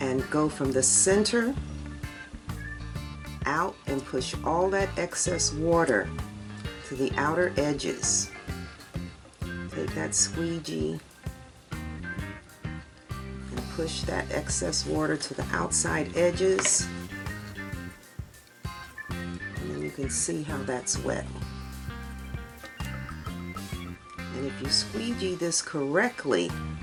go from the center out and push all that excess water to the outer edges. Take that squeegee and push that excess water to the outside edges, and then you can see how that's wet. And if you squeegee this correctly,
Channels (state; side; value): identical; both; correlation 1.00